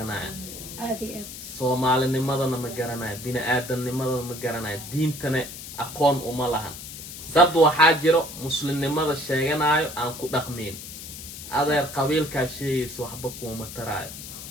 Soomaalinimadana ma garanayaan bini'aadamnimadana ma garanayaan diintana aqoon uma lahan dad waxaa jiro muslimnimada sheeganayo aan ku dhaqmin adeer qabiilkaa sheegaysa waxba kuma taraayo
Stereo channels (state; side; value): noise; left; hiss, 11 dB below the sound